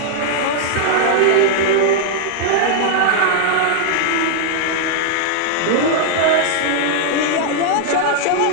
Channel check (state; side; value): different; both; correlation -0.01